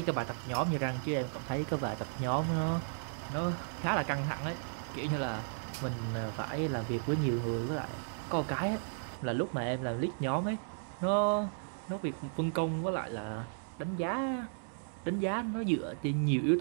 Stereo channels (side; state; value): left; silent; digital silence